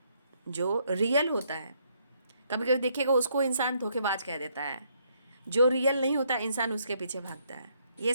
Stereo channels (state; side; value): inverted; both; correlation -0.71